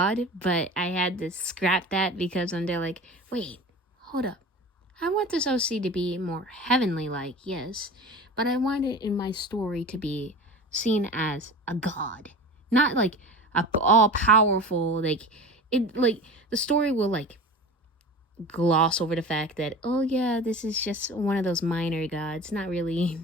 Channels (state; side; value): normal; both; correlation 0.34